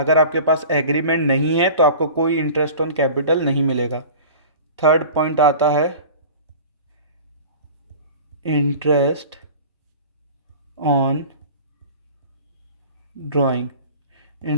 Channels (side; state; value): both; inverted; correlation -0.40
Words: आपके पास एग्रीमेंट नहीं है तो आपको कोई इंटरेस्ट ऑन कैपिटल नहीं मिलेगा। थर्ड पॉइंट आता है interest on drawing.